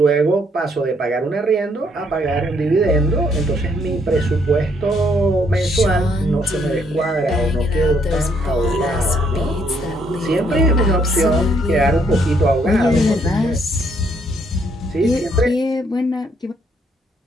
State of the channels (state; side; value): normal; both; correlation 0.70